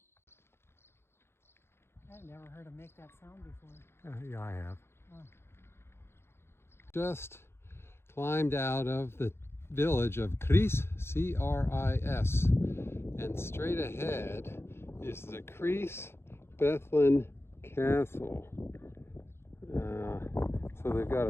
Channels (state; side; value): late; right; 0.12 ms